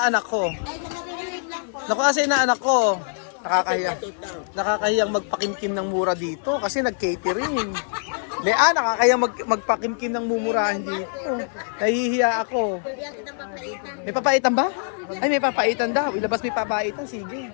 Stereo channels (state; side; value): silent; right; 63 dB below the other